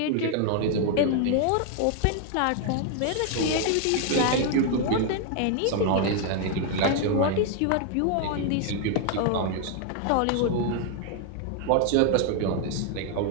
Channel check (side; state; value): both; different; correlation 0.00